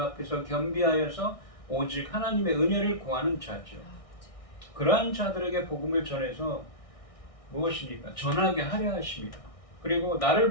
겸비하여서 오직 하나님의 은혜를 구하는 자죠. 그러한 자들에게 복음을 전해서 무엇입니까? 전하게 하려 하십니다. 그리고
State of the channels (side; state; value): right; late; 1.6 ms